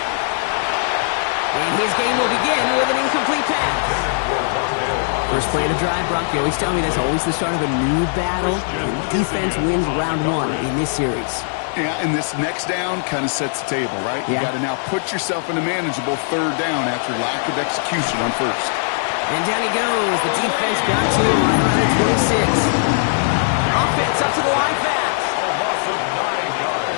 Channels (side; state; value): right; silent; 56 dB below the other